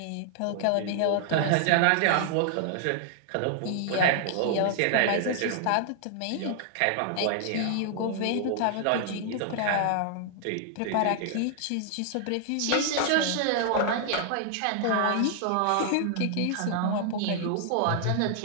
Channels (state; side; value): different; both; correlation 0.00